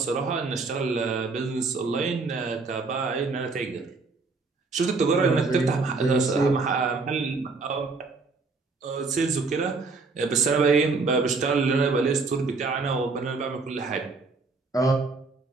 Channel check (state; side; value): quieter; left; 4.0 dB